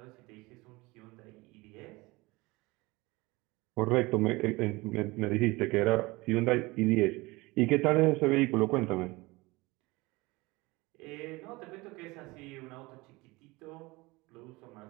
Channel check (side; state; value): left; quieter; 22.1 dB